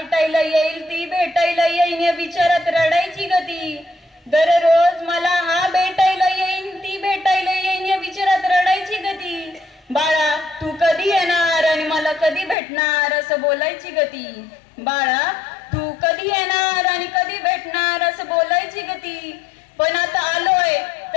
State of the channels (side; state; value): right; drops out; at 12.6 s